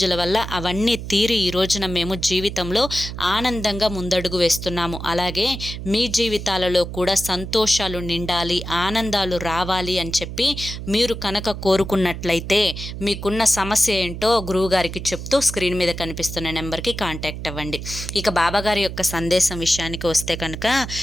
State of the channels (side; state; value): right; noise; hum, 8 dB below the sound